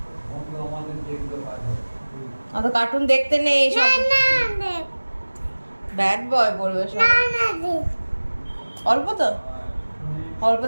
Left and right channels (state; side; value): inverted; both; correlation -1.00